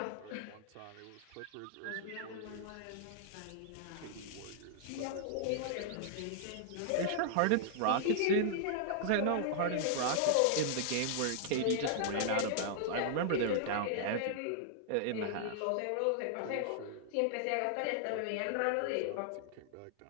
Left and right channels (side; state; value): both; different; correlation -0.01